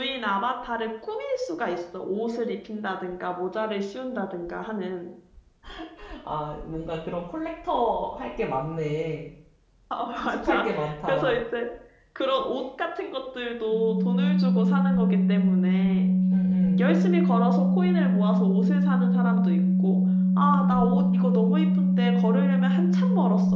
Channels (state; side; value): identical; both; correlation 1.00